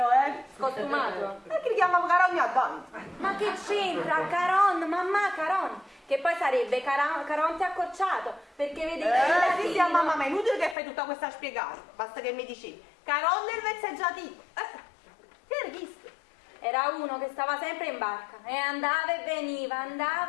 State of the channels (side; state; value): right; drops out; at 10.8 s